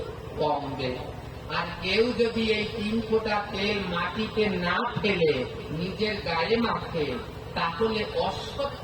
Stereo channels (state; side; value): identical; both; correlation 1.00